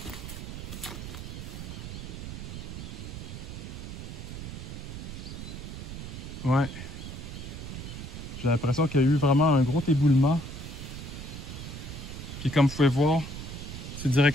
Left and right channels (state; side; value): noise; right; rumble, 8 dB below the sound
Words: Ouais. J'ai l'impression qu'il y a eu vraiment un gros éboulement. Puis comme vous pouvez voir, c'est